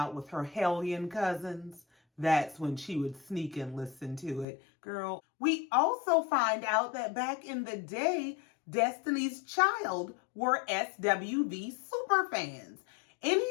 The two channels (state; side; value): drops out; right; at 4.5 s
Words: with her hellion cousins, that's when she would sneak and listen to it. Girl, we also find out that back in the day, Destiny's Child were SWV super fans.